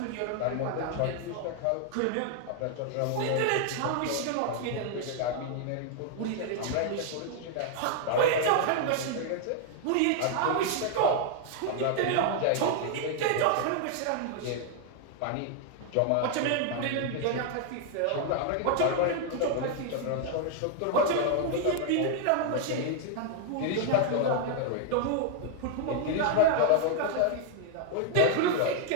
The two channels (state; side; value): different; both; correlation 0.00